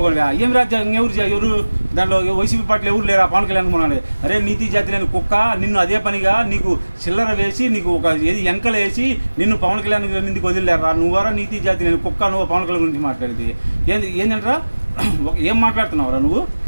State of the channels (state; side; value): inverted; both; correlation -1.00